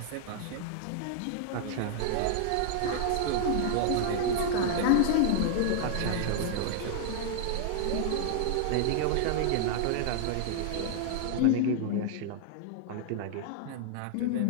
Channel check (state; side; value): different; both; correlation 0.00